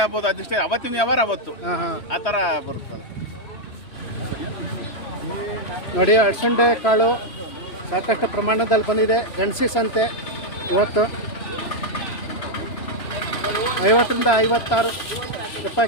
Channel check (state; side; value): late; right; 3.0 ms